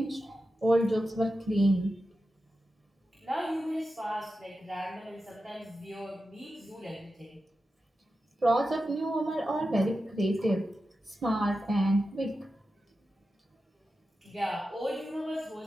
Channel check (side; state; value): both; normal; correlation 0.91